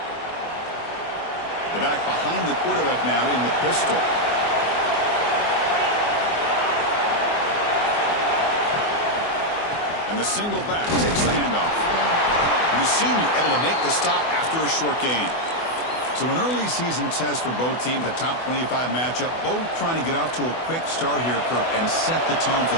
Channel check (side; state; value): right; late; 24 ms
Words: The back behind the quarterback now in the pistol. And the single back takes the handoff. And the senior able to make the stop after a short gain. So an early season test for both teams, a top 25 matchup. Both trying to get off to a quick start here, Kirk, and set the tone